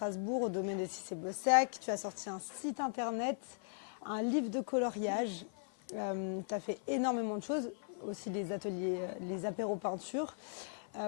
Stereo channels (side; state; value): right; silent; 52 dB below the other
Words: au domaine de Cissé-Bossac. Tu as sorti un site internet, un livre de coloriage. Tu as fait énormément de choses, aussi les ateliers, les apéros peinture.